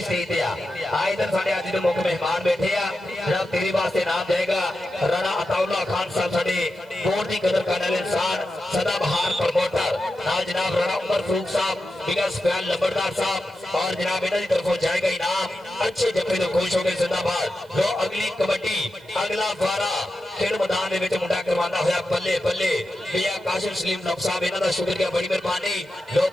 पे आ इधर साढ़े आज जो मुख्य मेहमान बैठे आ जनाब तेरे वास्ते नाम जाएगा राणा अताउल्ला खान साहब साढ़े बोर्ड की कदर करने वाले इंसान सदाबहार प्रमोटर नाल जनाब राणा उमर फारूक साहब बिगस फैन लंबरदार साहब और जनाब इन्हों की तरफों जाएगा इनाम अच्छे जफे तो खुश हो गए जिंदाबाद जो अगली कबड्डी अगला वारा खेल मैदान ਦੇ ਵਿੱਚ ਮੁੰਡਾ ਕਰਵਾਉਂਦਾ ਹੋਇਆ ਬੱਲੇ ਬੱਲੇ ਪਿਆ ਕਾਸ਼ਿਮ ਸਲੀਮ ਨਫ ਸਾਹਿਬ ਇਹਨਾਂ ਦਾ ਸ਼ੁਕਰੀਆ ਬੜੀ ਮਿਹਰਬਾਨੀ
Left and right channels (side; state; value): right; noise; hiss, 29 dB below the sound